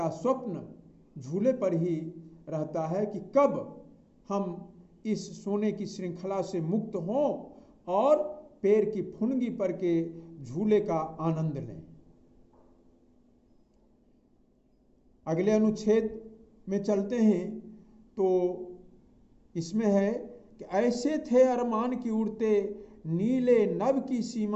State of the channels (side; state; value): both; identical; correlation 1.00